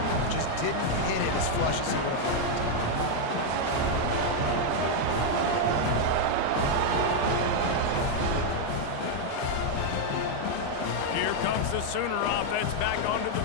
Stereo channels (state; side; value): different; both; correlation 0.00